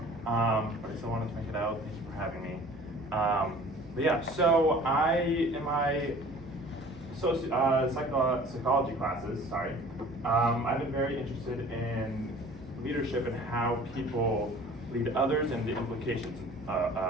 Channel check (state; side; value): noise; right; hum, 21 dB below the sound